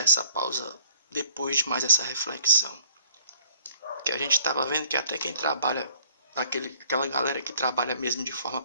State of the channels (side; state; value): both; inverted; correlation -0.58